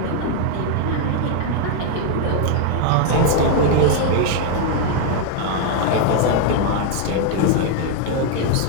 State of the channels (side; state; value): both; different; correlation 0.01